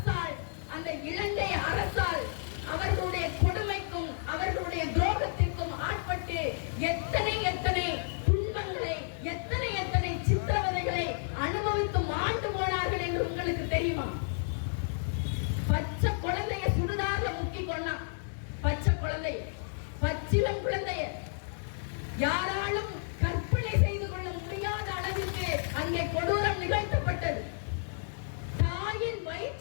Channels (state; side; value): silent; right; 57 dB below the other